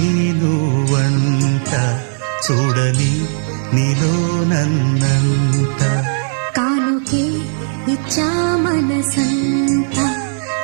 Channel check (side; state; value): left; silent; digital silence